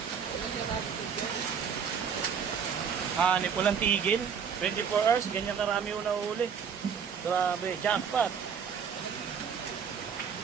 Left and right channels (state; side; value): quieter; left; 7.0 dB